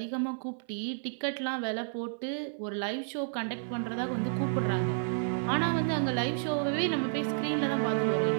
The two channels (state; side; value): silent; left; 57 dB below the other